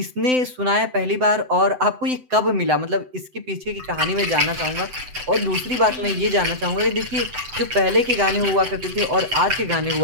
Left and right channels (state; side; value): late; left; 7.8 ms